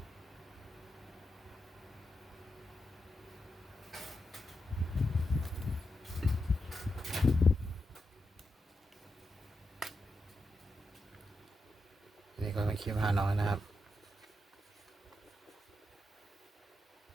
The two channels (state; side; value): normal; both; correlation 0.87